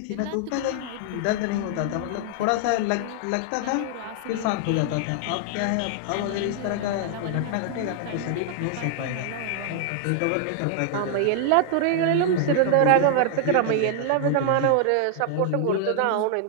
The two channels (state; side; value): different; both; correlation 0.00